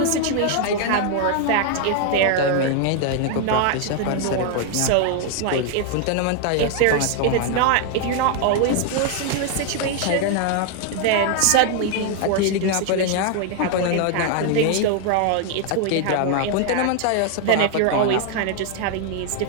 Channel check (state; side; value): different; both; correlation 0.00